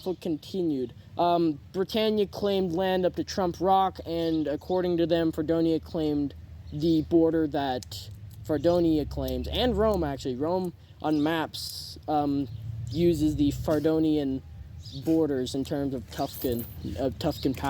continued. Britannia claimed land up to Trump Rock, and according to them, Fardonia claimed the border that Fardonia claims, and Rome, actually. Rome, on maps, uses the Fardonian borders in terms of Tuscan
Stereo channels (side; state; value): both; identical; correlation 1.00